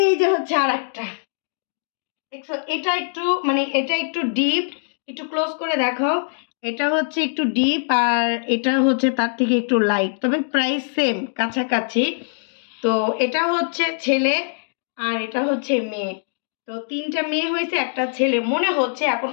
যে হচ্ছে আর একটা, দেখছো এটা একটু মানে এটা একটু ডিপ, একটু ক্লোজ করে দেখো, এটা হচ্ছে একটু ডিপ আর এটা হচ্ছে তার থেকে একটু লাইট, তবে প্রায় সেম কাছাকাছি। তো এটা হচ্ছে ছেলে আর এটা হচ্ছে মেয়ে। তো তিনটা মেয়ে হয়েছে, একটা ছেলে মনে হচ্ছে, এখন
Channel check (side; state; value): right; silent; digital silence